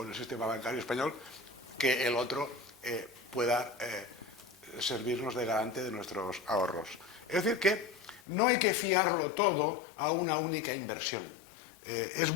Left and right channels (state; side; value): drops out; right; at 8.2 s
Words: el sistema bancario español, que el otro pueda servirnos de garante de nuestros ahorros. Es decir, que no hay que fiarlo todo a una única inversión. Es